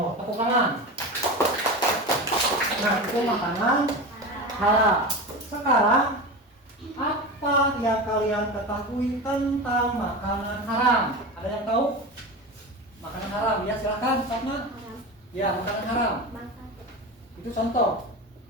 Tepuk tangan. Nah, itu makanan halal. Sekarang, apa yang kalian ketahui tentang makanan haram? Ada yang tahu? Makanan haram, ya silahkan, sama. Ya, makanan haram. Itu contoh.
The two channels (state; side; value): normal; both; correlation 0.26